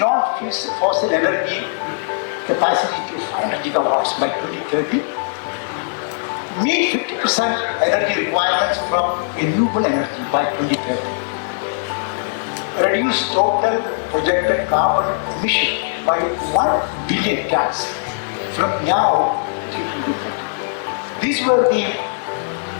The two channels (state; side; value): silent; right; digital silence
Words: energy capacity to 500 gigawatts by 2030. Meet 50% energy requirements from renewable energy by 2030. Reduce total projected carbon emission by 1 billion tons from now till 2030. These were the